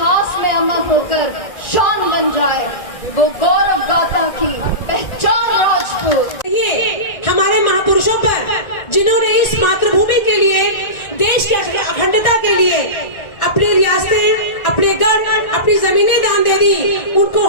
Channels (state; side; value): late; right; 1.8 ms